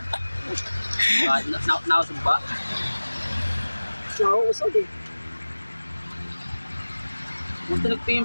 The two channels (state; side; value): inverted; both; correlation -1.00